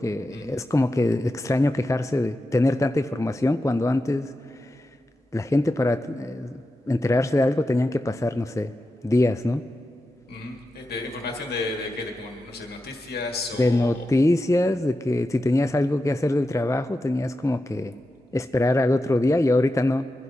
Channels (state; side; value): normal; both; correlation 0.90